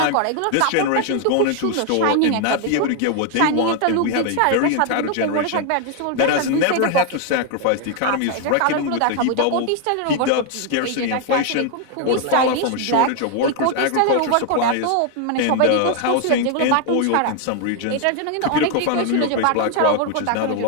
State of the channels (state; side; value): different; both; correlation 0.00